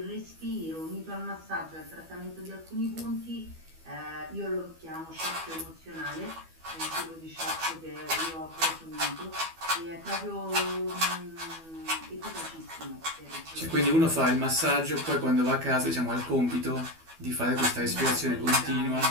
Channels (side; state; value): left; late; 12 ms